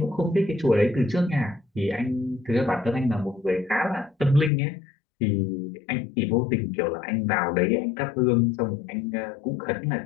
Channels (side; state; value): right; drops out; at 4.5 s